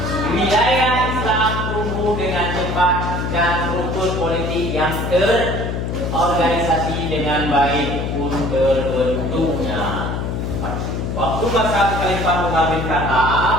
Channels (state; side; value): noise; left; hum, 3 dB below the sound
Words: Wilayah Islam tumbuh dengan cepat dan struktur politik yang terorganisasi dengan baik pun terbentuknya. Waktu masa Khalifah Umar bin